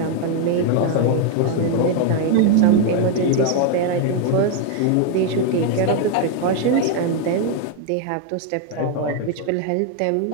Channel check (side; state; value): both; different; correlation 0.01